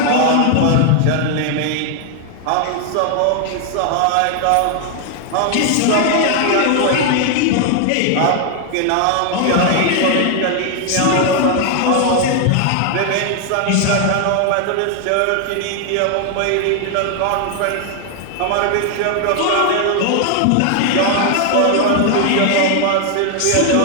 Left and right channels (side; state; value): both; different; correlation 0.00